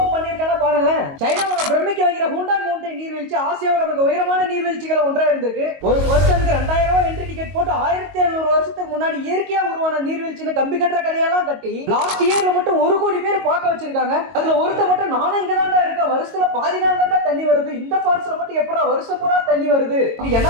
பண்ணிருக்கானா பாருங்களேன். சைனாவோட பிரமிக்க வைக்கிற ஹூண்டாய் மவுண்டன் நீர்வீழ்ச்சி ஆசியாவோட மிக உயரமான நீர்வீழ்ச்சிகளை ஒன்றா இருந்திருக்கு. ஒரு பர்சனுக்கு 2000 ரூபாய் என்ட்ரி டிக்கெட் போட்டு 1700 வருஷத்துக்கு முன்னாடி இயற்கையா உருவான நீர்வீழ்ச்சின்னு கம்பி கட்டுற கதையெல்லாம் கட்டி லாஸ்ட் இயர்ல மட்டும் 1 கோடி பேர் பார்க்க வச்சிருக்காங்க. அதுல ஒருத்த மட்டும் நானும் இங்க தான்டா இருக்கேன், வருஷத்துல பாதி நாள் தான்டா தண்ணி வருது, இந்த ஃபால்ஸ்ல மட்டும் எப்படா வருஷம் பூரா தண்ணி வருது, இது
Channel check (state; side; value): late; left; 22 ms